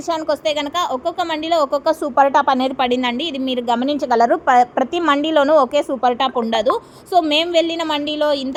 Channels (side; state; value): both; identical; correlation 1.00